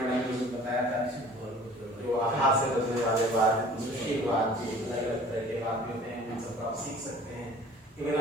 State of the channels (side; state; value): both; normal; correlation 0.48